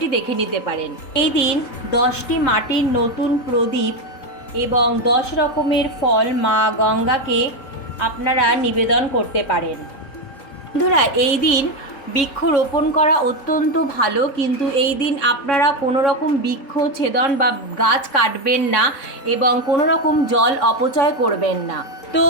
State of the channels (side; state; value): right; late; 3.6 ms